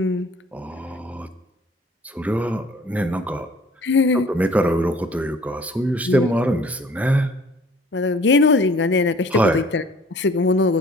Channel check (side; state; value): both; normal; correlation 0.52